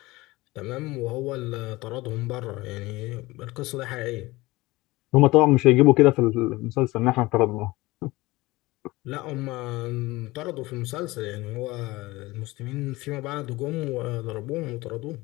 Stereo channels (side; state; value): right; quieter; 20.6 dB